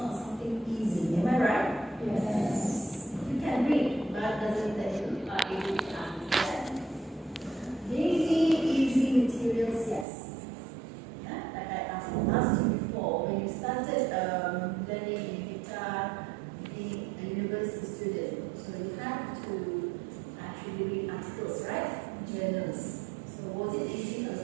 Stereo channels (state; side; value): drops out; left; at 10.1 s